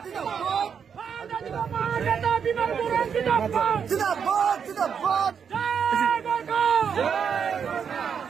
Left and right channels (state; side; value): quieter; left; 7.1 dB